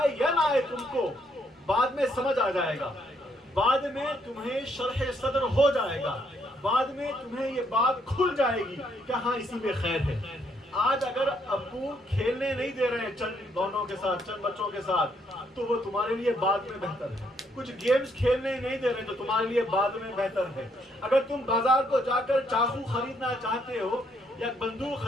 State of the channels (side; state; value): both; normal; correlation 0.72